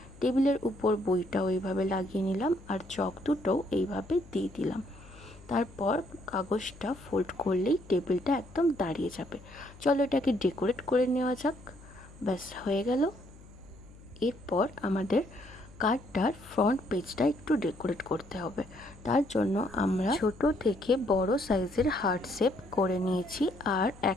টেবিলের উপর বইটাও এইভাবে লাগিয়ে নিলাম আর চক দুটোও এইভাবে দিয়ে দিলাম। তারপর কাগজটা ফোল্ড করলেই টেবিলটা একদম দাঁড়িয়ে যাবে। চলো এটাকে ডেকোরেট করে নেওয়া যাক। ব্যাস হয়ে গেল। এরপর আমাদের কার্ডটার ফ্রন্ট পেজটা একটু ডেকোরেট করতে হবে। তার জন্য আমরা ছোট থেকে বড় সাইজের হার্ট শেপ করে নিয়েছি আর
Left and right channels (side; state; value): left; noise; hum, 21 dB below the sound